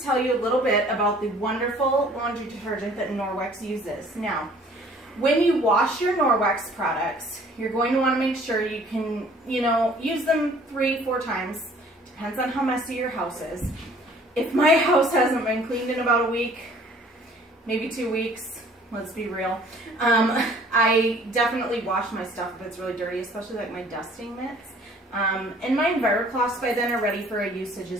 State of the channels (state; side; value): normal; both; correlation 0.54